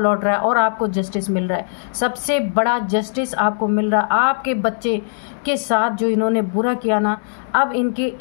रहा है और आपको जस्टिस मिल रहा है। सबसे बड़ा जस्टिस आपको मिल रहा है। आपके बच्चे के साथ जो इन्होंने बुरा किया ना, अब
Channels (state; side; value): silent; right; 66 dB below the other